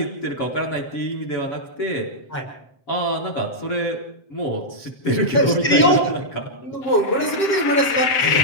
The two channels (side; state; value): right; late; 7.6 ms